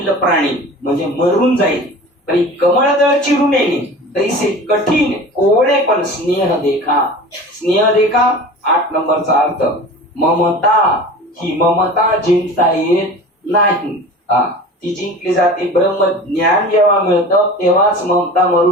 प्राणी, म्हणजे मरून जाईल. परी कमळदळ चिरून येणे, तैसे कठीण कोवळे पण स्नेह देखा. स्नेह देखा 8 नंबरचा अर्थ, ममता. ही ममता जिंकता येत नाही, ती जिंकली जाते. ब्रह्म ज्ञान जेव्हा मिळतं तेव्हाच ममता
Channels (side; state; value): both; normal; correlation 0.37